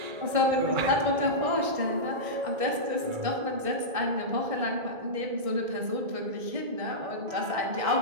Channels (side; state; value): left; late; 1.6 ms